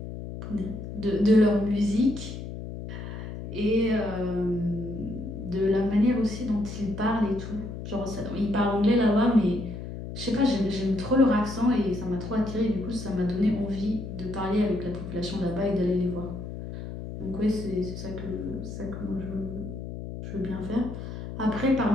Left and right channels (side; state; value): left; noise; hum, 8 dB below the sound